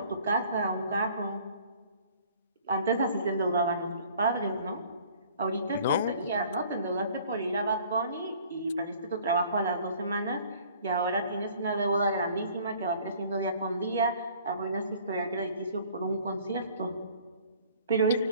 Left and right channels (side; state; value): both; inverted; correlation -0.53